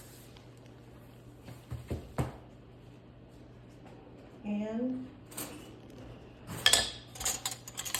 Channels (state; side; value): identical; both; correlation 1.00